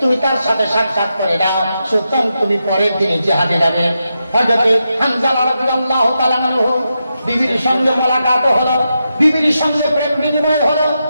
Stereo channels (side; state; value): both; inverted; correlation -0.87